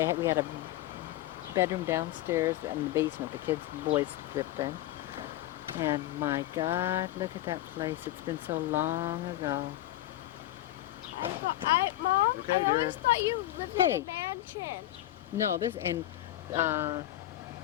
had a bedroom downstairs and the basement the boys lived in. And my God, look at that place. It's been so long ago. Mom, Okay, I always dear. thought you lived Hey. in a mansion. No, this, and her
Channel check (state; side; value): quieter; right; 14.8 dB